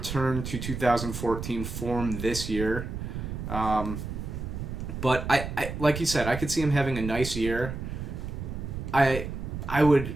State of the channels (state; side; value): noise; right; rumble, 6 dB below the sound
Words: to 2014 form this year. But I like you said, I could see him having a nice year. I would